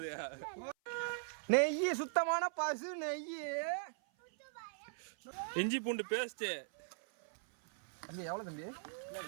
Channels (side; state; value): left; silent; 51 dB below the other